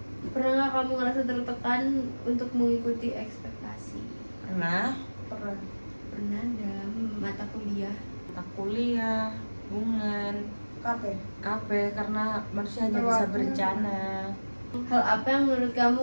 Pernah nggak kamu ngerasa tertekan untuk mengikuti ekspektasi? Pernah. Pernah dalam mata kuliah. Kuliah. Hubungan. Kafe karena manusia hanya bisa berencana. Hal apa yang menurut kamu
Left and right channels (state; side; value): inverted; both; correlation -1.00